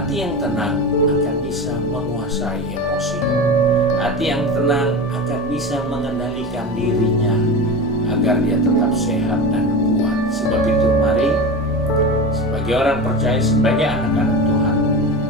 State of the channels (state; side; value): normal; both; correlation 0.26